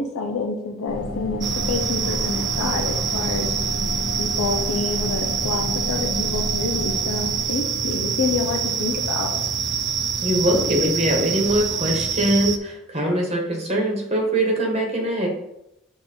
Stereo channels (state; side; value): normal; both; correlation 0.41